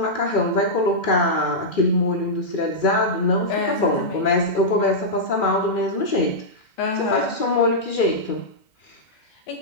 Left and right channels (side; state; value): right; late; 2.4 ms